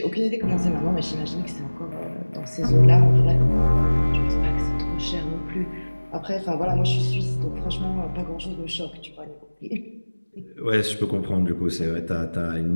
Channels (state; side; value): inverted; both; correlation -1.00